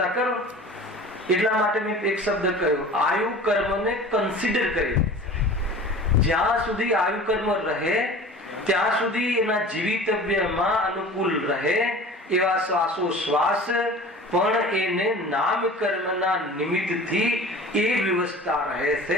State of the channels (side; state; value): both; normal; correlation 0.41